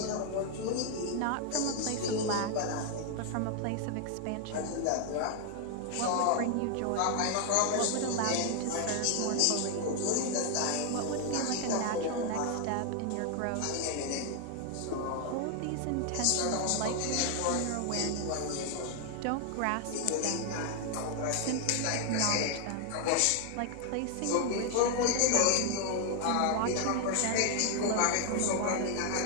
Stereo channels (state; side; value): different; both; correlation 0.00